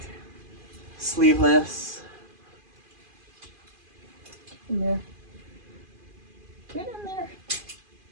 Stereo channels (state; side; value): late; left; 2.5 ms